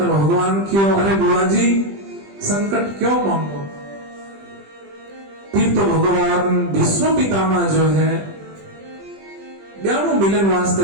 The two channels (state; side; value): late; left; 20 ms